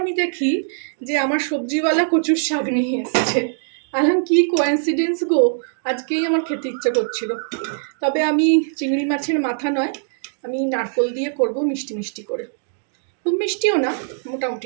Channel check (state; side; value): silent; left; digital silence